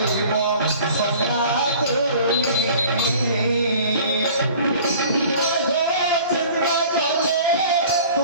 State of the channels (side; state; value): both; inverted; correlation -0.47